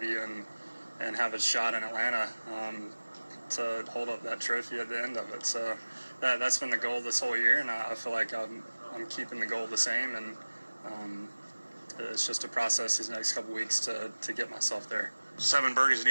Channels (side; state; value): both; inverted; correlation -1.00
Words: and have a shot in Atlanta to hold up that trophy at the end of it. So that's been the goal this whole year, and I feel like I'm keeping the goal the same, and it's just a process these next couple weeks to get myself there. 7 birdies and